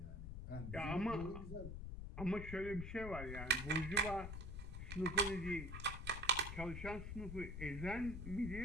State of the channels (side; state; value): left; noise; rumble, 6 dB below the sound